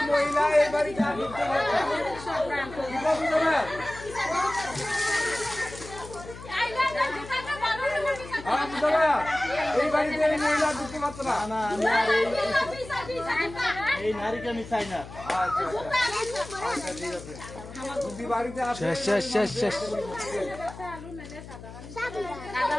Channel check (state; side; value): noise; left; hum, 14 dB below the sound